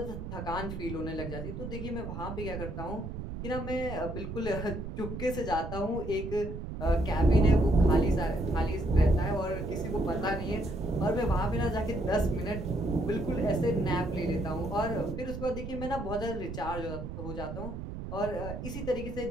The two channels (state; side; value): noise; right; rumble, 7 dB below the sound